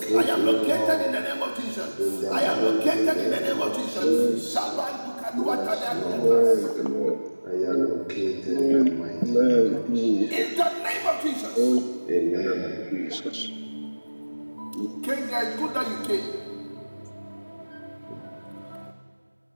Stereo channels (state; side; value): inverted; both; correlation -1.00